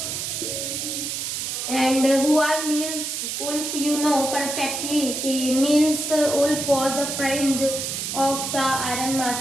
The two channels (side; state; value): right; noise; hiss, 3 dB below the sound